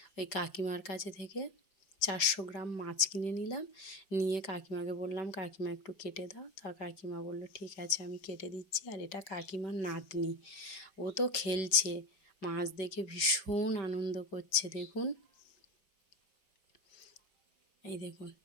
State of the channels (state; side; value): late; right; 5.2 ms